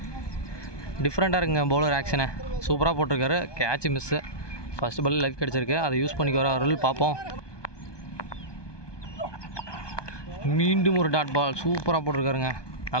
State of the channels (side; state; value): right; late; 1.2 ms